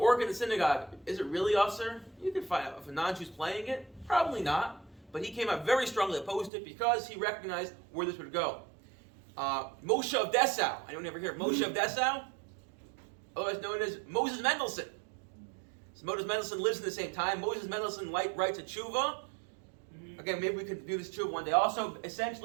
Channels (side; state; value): left; drops out; at 6.5 s